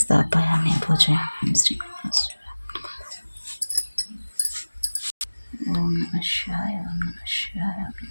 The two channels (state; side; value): inverted; both; correlation -1.00